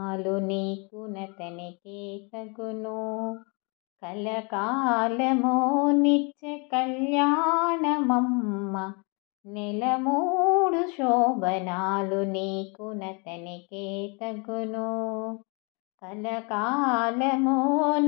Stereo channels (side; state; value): right; quieter; 32.5 dB